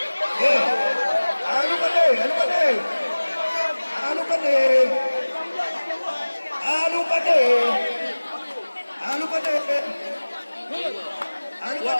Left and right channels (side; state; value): both; inverted; correlation -1.00